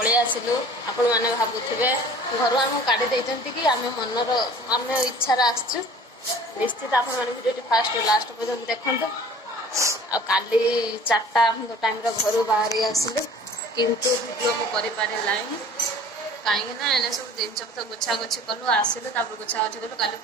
आसिलु आपण मैंने भावुवे घर आम काढ़ी कि आम मनर आम इच्छार आसचु निश्चित आपण मैंने वीडियो फास्ट लास्ट पर्यटन देखते काली 4टा टाइम घर बाहर आसिलु किंतु वीडियो को कर कहीं ना एने सब जिन गुछा गुछी कलु आसिलु गुछा गुछी कलु काली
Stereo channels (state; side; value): normal; both; correlation 0.47